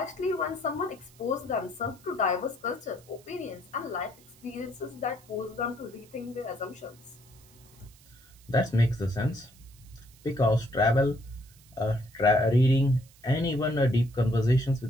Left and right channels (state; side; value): noise; right; hiss, 26 dB below the sound